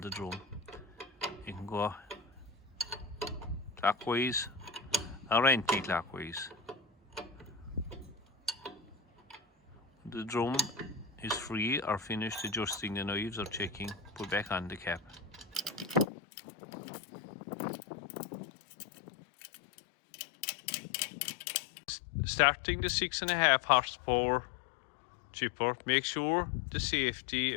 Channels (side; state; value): right; drops out; at 16.1 s